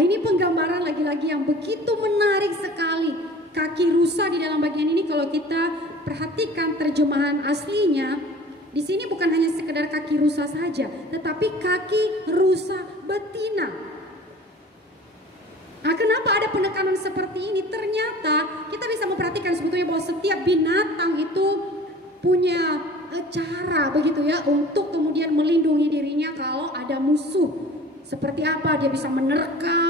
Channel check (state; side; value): normal; both; correlation 0.44